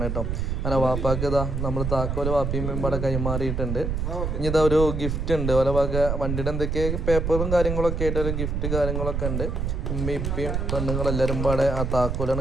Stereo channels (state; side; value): noise; right; rumble, 1 dB below the sound